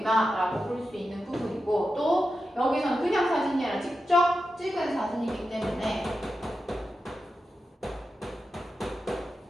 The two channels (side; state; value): both; normal; correlation 0.90